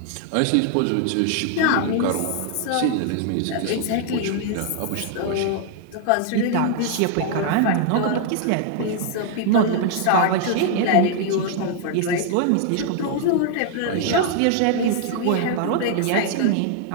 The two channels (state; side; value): different; both; correlation 0.00